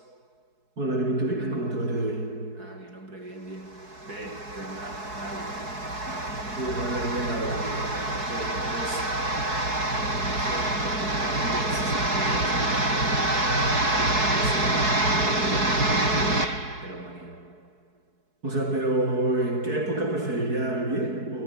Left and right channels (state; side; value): late; left; 4.7 ms